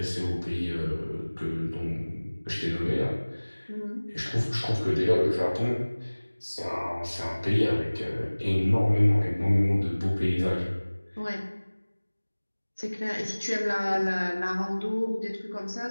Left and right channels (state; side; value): inverted; both; correlation -1.00